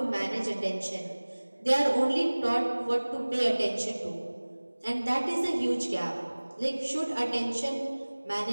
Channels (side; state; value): both; inverted; correlation -1.00